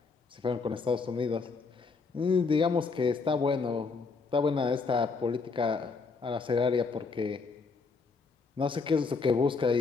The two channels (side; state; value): right; quieter; 4.5 dB